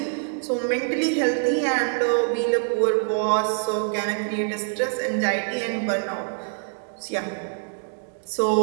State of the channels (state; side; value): silent; left; digital silence